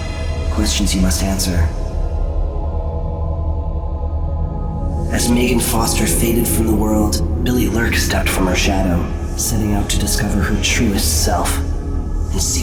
Questions you must answer. As Megan Foster faded from the world, Billy Lurk stepped from her shadow, setting out to discover her truest self, and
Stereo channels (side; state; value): both; identical; correlation 1.00